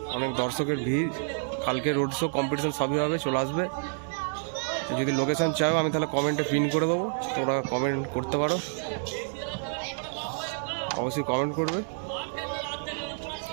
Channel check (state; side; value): silent; left; 59 dB below the other